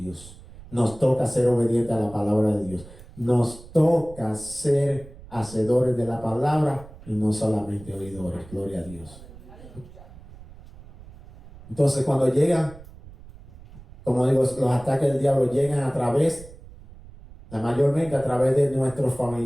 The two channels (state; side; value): noise; right; rumble, 19 dB below the sound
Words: Nos toca ser obedientes a la palabra de Dios. Nos toca ser hacedores de la palabra y no solamente oidores. Gloria a Dios. Entonces cuando llegan, como digo, los ataques del diablo llegan a través, mayormente a través de nuestros